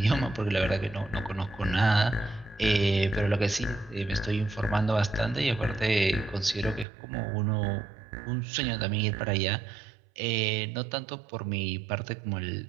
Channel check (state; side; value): drops out; left; at 6.9 s